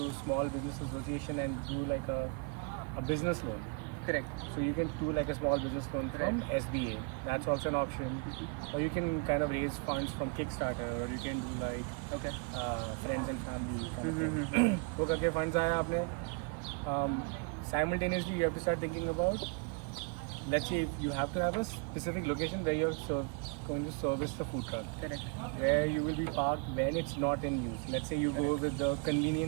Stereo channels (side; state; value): left; quieter; 33.5 dB